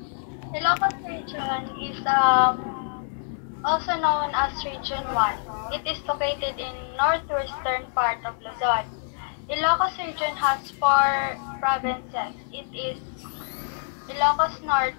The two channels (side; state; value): right; silent; 61 dB below the other